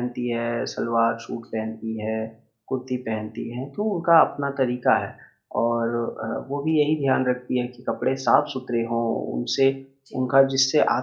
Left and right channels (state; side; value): identical; both; correlation 1.00